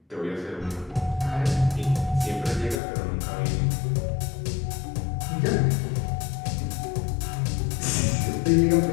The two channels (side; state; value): right; drops out; at 2.8 s